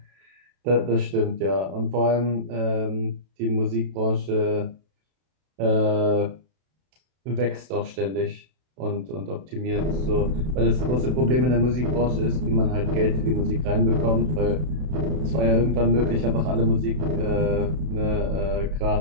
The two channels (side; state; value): left; late; 32 ms